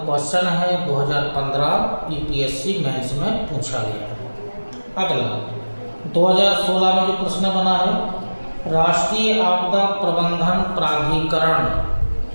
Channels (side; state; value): both; inverted; correlation -1.00